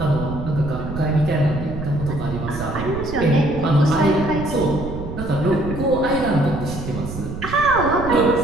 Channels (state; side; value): noise; right; rumble, 8 dB below the sound